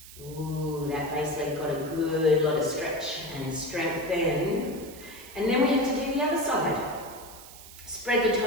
Ooh, that base leg got a good lot of stretch and strength then. And then we have to do the other side. Spread the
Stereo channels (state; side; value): noise; right; hiss, 17 dB below the sound